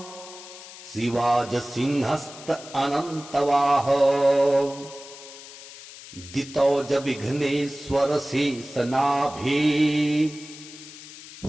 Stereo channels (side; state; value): left; noise; hiss, 16 dB below the sound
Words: शिवाज सिंहस्त अनन्तवाह दितौज विघ्नेश्वर शेषनाभे